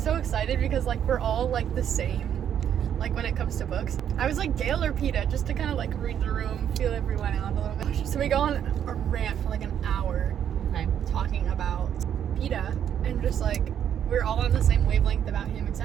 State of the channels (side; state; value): left; quieter; 9.3 dB